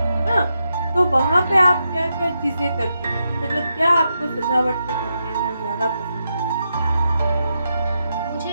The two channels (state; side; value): inverted; both; correlation -0.85